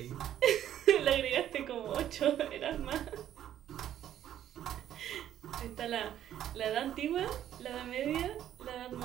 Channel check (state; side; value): quieter; left; 11.2 dB